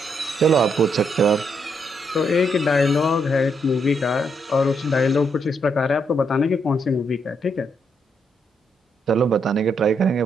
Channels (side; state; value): both; normal; correlation 0.77